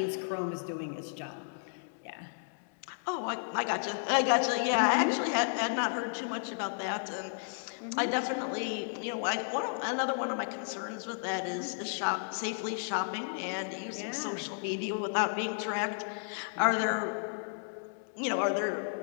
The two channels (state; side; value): silent; right; digital silence